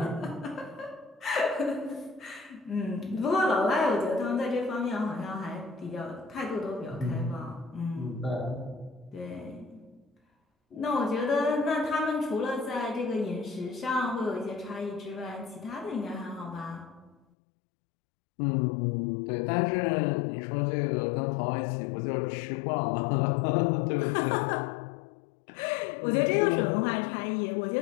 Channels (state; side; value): drops out; right; at 17.2 s